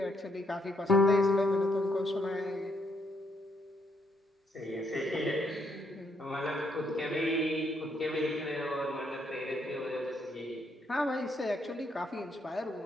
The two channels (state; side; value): normal; both; correlation 0.74